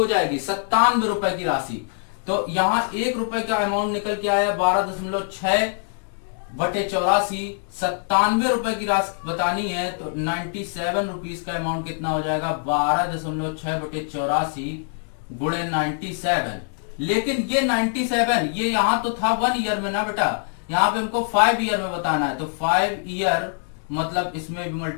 जाएगी, 97 रुपए की राशि। तो यहां 1 रुपए का अमाउंट निकल के आया 12.6 बटे 84, 97 रुपए की राशि बतानी है तो 97 रुपीज का अमाउंट कितना हो जाएगा, 12.6 बटे 84 गुणे 97। लेकिन ये 97 ये यहां तो था 1 ईयर में ना बेटा, यहां पे हमको 5 ईयर में बताना है। तो 5 ईयर मतलब इसमें भी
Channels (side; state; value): right; silent; digital silence